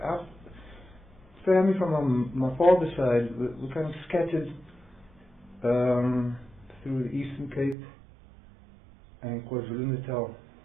family from my father's side were kind of scattered through the Eastern Cape and KwaZulu-Natal.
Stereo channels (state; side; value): drops out; left; at 7.8 s